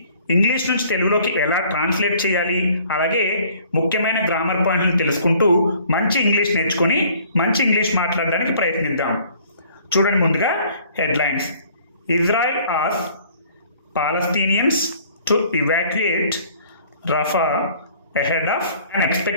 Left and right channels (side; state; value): both; inverted; correlation -0.56